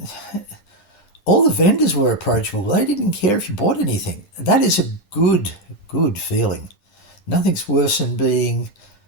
All the vendors were approachable. They didn't care if you bought anything. That is a good feeling. Nothing's worse than being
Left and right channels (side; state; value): right; late; 10 ms